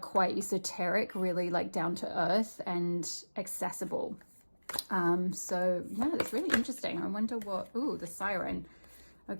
esoteric really like down to earth and accessible. So yeah, that's really interesting. I wonder what, ooh, the siren.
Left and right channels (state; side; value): inverted; both; correlation -1.00